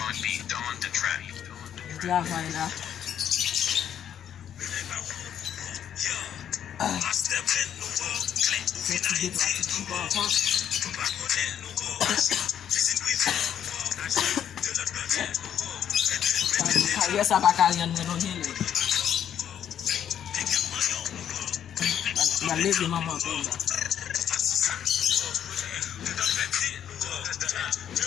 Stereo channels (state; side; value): quieter; right; 9.6 dB